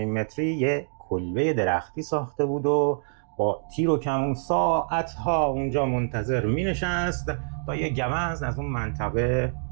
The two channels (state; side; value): silent; left; digital silence